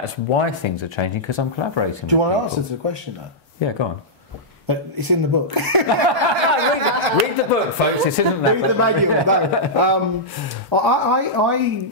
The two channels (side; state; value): both; normal; correlation -0.10